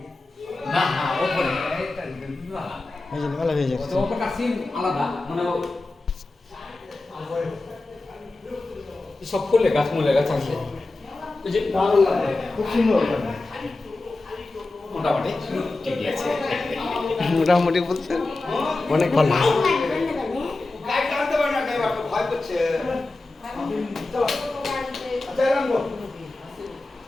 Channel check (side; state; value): right; quieter; 3.1 dB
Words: না না ওপরে এটা বিবাহ ভালো হয়ে যাচ্ছে। তো ওপরটা সিম আলাদা, মানে সব ফুলে গাছ মূলে গাছ আছে, ওই যে ভালো লাগে, খুব সুন্দর লাগে। মোটামুটি ঠিকই আছে। মোটামুটি বলতে অনেক ভালো।